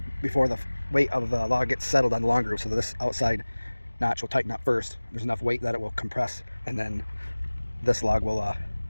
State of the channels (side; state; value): both; inverted; correlation -1.00